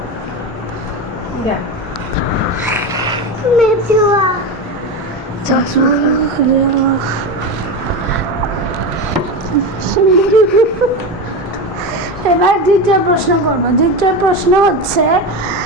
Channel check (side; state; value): both; normal; correlation 0.20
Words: মেজুয়া। এবার দ্বিতীয় প্রশ্ন করব। দ্বিতীয় প্রশ্ন হচ্ছে,